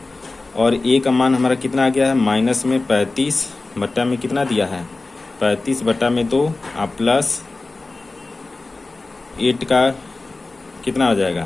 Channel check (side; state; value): right; quieter; 3.3 dB